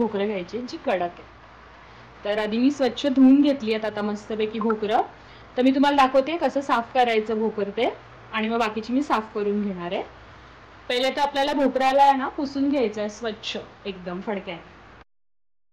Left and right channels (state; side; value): identical; both; correlation 1.00